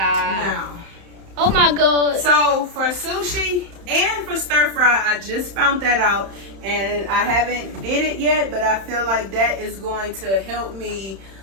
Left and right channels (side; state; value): left; late; 31 ms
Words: Now. Oh my god. So for sushi and for stir fry, I just found that out, and I haven't did it yet, but I feel like that is going to help me